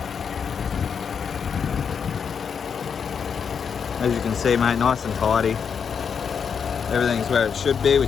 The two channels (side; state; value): right; quieter; 6.7 dB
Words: As you can see, mate, nice and tidy. Everything's where it should be,